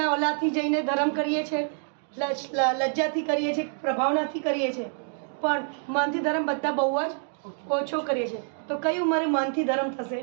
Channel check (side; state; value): left; silent; 60 dB below the other